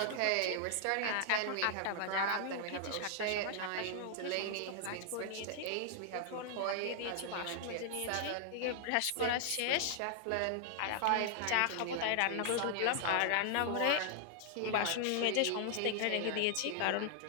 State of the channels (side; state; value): both; different; correlation 0.00